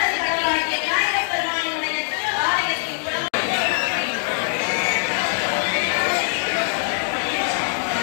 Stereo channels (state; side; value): silent; right; digital silence